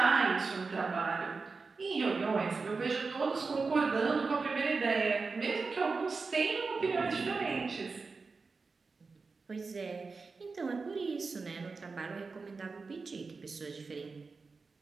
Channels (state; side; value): quieter; left; 4.4 dB